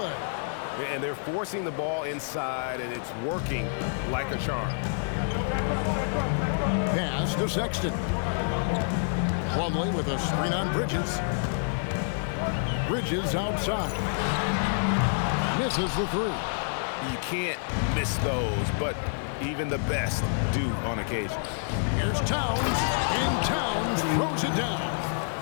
And they're forcing the ball inside, and it's working like a charm. Pass to Sexton. Plumlee with a screen on Bridges. Bridges outside. Misses the 3. You can't miss those, but even the best do on occasion. Here's Towns, and Towns throws it down.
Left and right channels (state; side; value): silent; right; digital silence